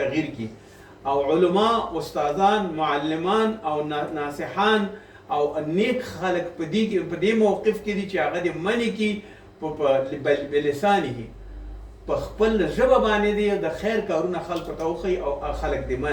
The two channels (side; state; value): both; identical; correlation 1.00